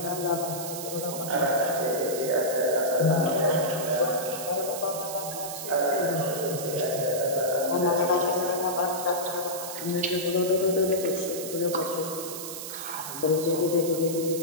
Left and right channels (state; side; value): noise; right; hiss, 8 dB below the sound